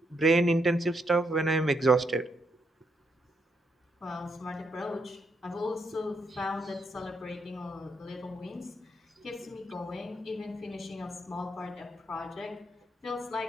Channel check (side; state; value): both; normal; correlation 0.78